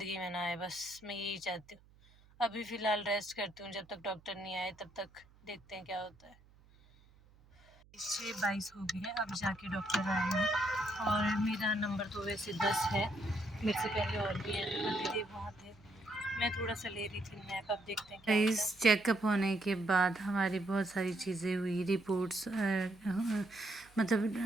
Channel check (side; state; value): right; noise; hum, 27 dB below the sound